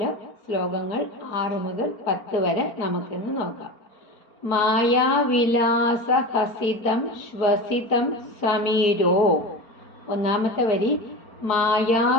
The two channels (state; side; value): late; right; 4.4 ms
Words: ശ്ലോകങ്ങൾ 6 മുതൽ 10 വരെ നമുക്കിന്ന് നോക്കാം. മായാവിലാസ ഹസിതം ശ്വസിതം സമീരോ. ഒന്നാമത്തെ വരി